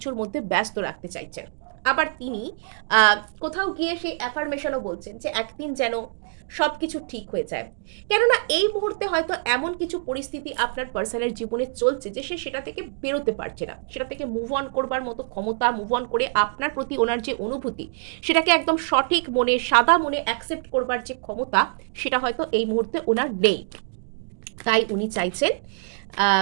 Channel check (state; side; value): silent; left; digital silence